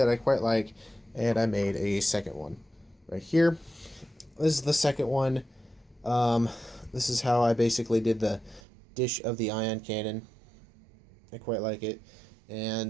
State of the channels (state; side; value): drops out; left; at 8.6 s